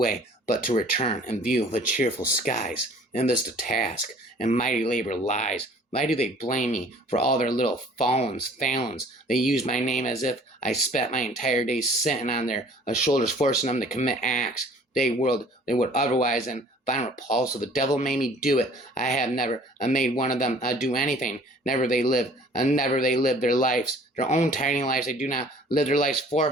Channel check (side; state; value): both; normal; correlation 0.52